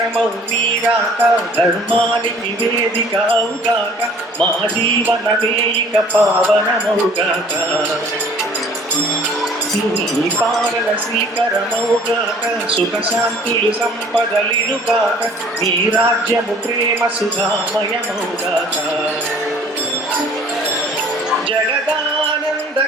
नीराक धर्मानि निवेदिकाउगाक मा जीवनमेयिक पावनमौगाक నీ పాలన శ్రీకరమౌగాక సుఖ శాంతులు సంపదలినుగాక నీ రాజ్యము ప్రేమ సుధామయమౌగాక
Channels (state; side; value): normal; both; correlation 0.52